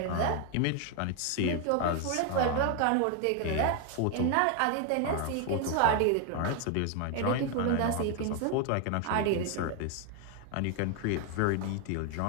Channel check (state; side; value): different; both; correlation 0.01